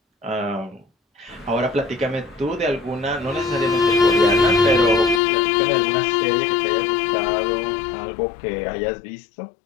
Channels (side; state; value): right; drops out; at 5.2 s